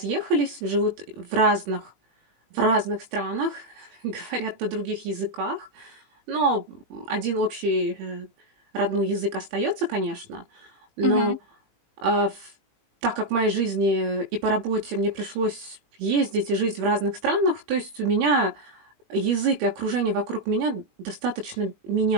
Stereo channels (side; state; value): left; late; 18 ms